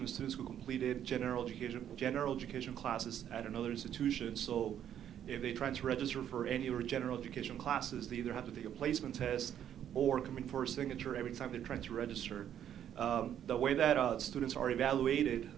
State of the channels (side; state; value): left; quieter; 10.0 dB